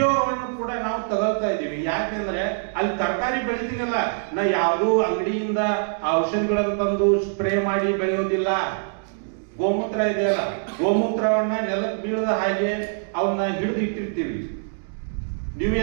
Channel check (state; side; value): silent; left; digital silence